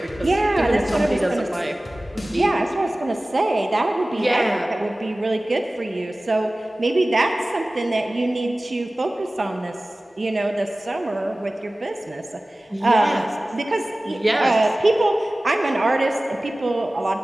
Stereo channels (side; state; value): both; normal; correlation 0.98